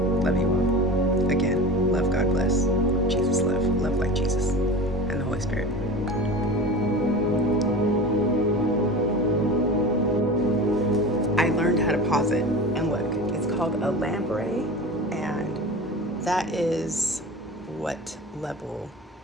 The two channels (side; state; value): both; normal; correlation 0.33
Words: Love you all. Again, love, God bless. Jesus love. Love like Jesus. And the Holy Spirit. I learned how to pause it. And look, it's called a lamprey. And that is what level?